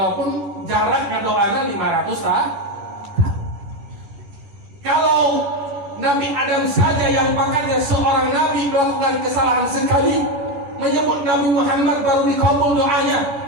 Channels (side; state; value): left; late; 10 ms